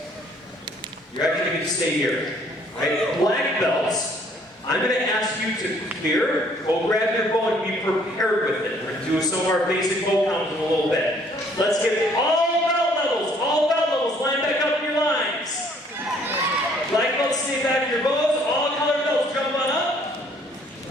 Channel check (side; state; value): both; normal; correlation 0.61